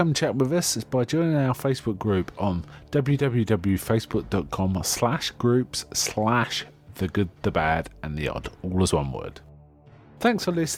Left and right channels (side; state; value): both; identical; correlation 1.00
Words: chat with us by joining our Facebook group on www.facebook.com/groups/The Good, The Bad and The Odd, all as one word. Thanks for